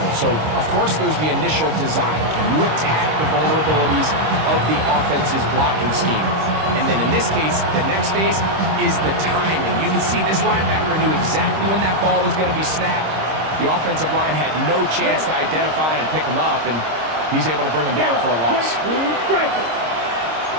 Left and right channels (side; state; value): left; late; 26 ms